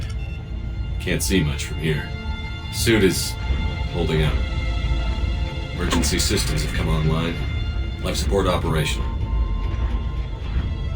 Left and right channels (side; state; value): both; identical; correlation 1.00